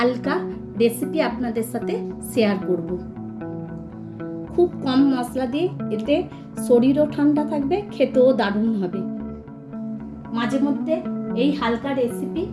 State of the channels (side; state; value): both; identical; correlation 1.00